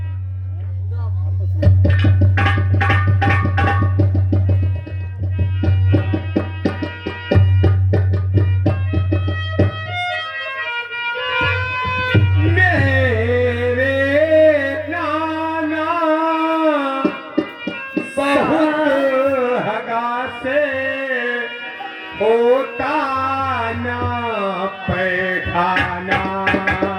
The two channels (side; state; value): both; identical; correlation 1.00